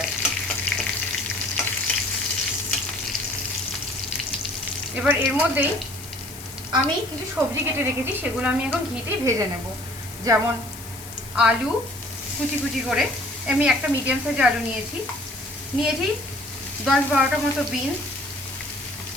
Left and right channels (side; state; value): left; noise; hiss, 14 dB below the sound